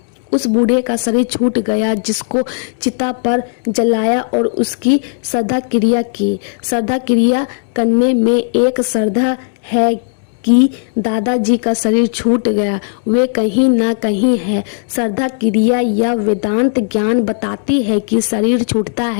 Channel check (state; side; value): silent; right; digital silence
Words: उस बूढ़े का शरीर छूट गया जिसको चिता पर जलाया और उसकी श्रद्धा क्रिया की। श्रद्धा क्रिया करने में एक श्रद्धा है कि दादाजी का शरीर छूट गया, वे कहीं ना कहीं है। श्रद्धा क्रिया या वेदांत ज्ञान बताती है कि शरीर छूटता